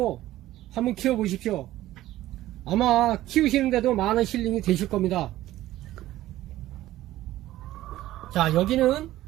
한번 키워보십시오. 아마 키우시는데도 많은 힐링이 되실 겁니다. 자, 여기는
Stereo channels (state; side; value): quieter; left; 15.0 dB